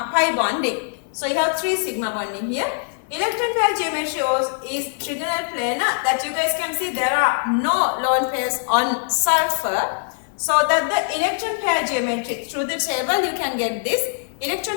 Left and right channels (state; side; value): silent; right; digital silence